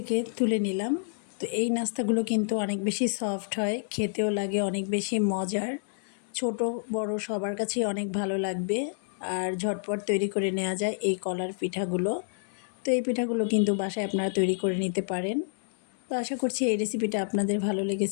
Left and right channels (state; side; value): silent; right; digital silence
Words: তুলে নিলাম। তো এই নাস্তাগুলো কিন্তু অনেক বেশি সফট হয়, খেতেও লাগে অনেক বেশি মজার। ছোট বড় সবার কাছেই অনেক ভালো লাগবে আর ঝটপট তৈরি করে নেওয়া যায় এই কলার পিঠাগুলো। তো এই পিঠাগুলো কিন্তু বাসায় আপনারা তৈরি করে নিতে পারেন। তো আশা করছি এই রেসিপিটা আপনাদের ভালো